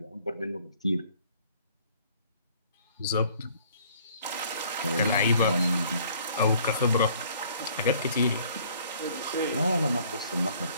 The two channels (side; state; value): both; inverted; correlation -0.58